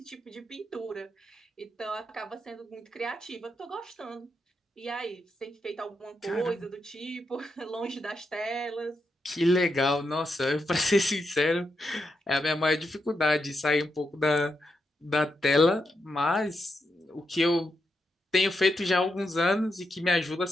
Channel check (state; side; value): normal; both; correlation 0.84